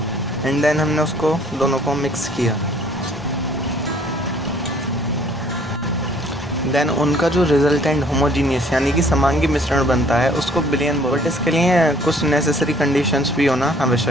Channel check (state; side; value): normal; both; correlation 0.58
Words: एंड देन हमने उसको दोनों को मिक्स किया। देन उनका जो रिजल्टेंट होमोजीनियस यानी कि समांगी मिश्रण बनता है उसको बिलियन बोलते हैं। बट इसके लिए कुछ नेसेसरी कंडीशंस भी होना